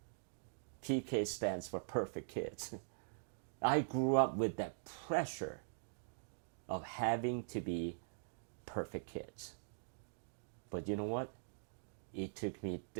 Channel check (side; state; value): left; silent; digital silence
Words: PK stands for perfect kids. I grew up with that pressure of having to be perfect kids. But you know what? It took me